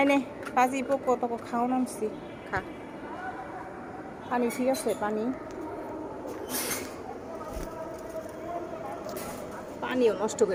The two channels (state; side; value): identical; both; correlation 1.00